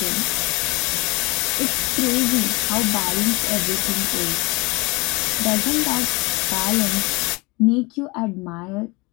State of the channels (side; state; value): right; quieter; 26.1 dB